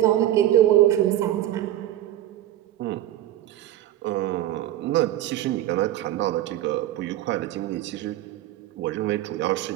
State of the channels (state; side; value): quieter; left; 13.5 dB